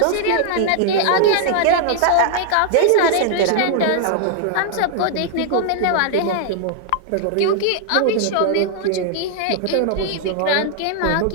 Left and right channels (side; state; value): both; different; correlation 0.00